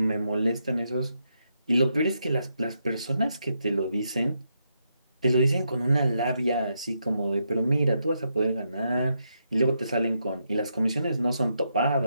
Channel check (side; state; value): both; inverted; correlation -0.81